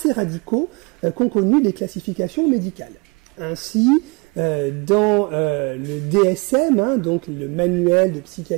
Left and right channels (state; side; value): quieter; left; 29.2 dB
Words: radicaux qu'ont connus les classifications médicales. Ainsi, dans le DSM, donc le manuel de